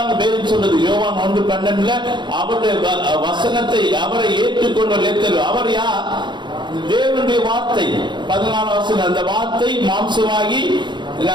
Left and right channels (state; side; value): late; left; 0.22 ms